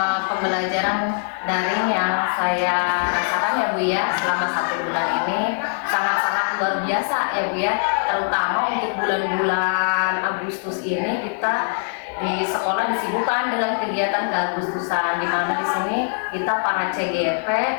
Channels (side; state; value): right; silent; 64 dB below the other